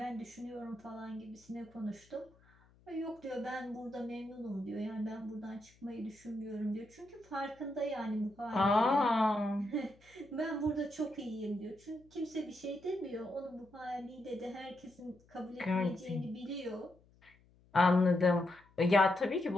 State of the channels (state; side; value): noise; left; hum, 29 dB below the sound